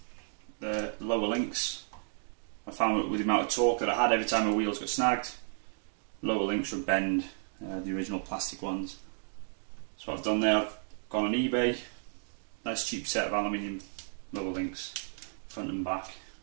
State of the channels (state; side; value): silent; left; digital silence